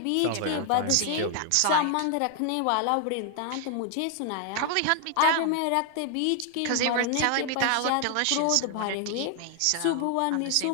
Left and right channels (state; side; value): different; both; correlation 0.00